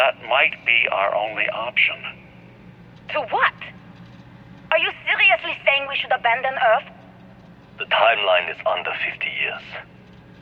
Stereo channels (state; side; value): identical; both; correlation 1.00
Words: might be our only option. To what? Are you seriously saying we should abandon Earth? The timeline is under 50 years.